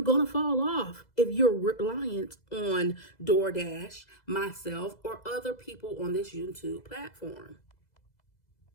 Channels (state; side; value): late; right; 2.0 ms